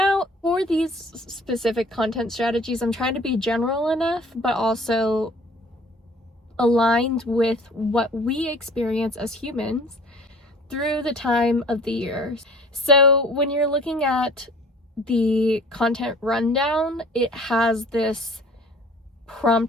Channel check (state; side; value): normal; both; correlation 0.50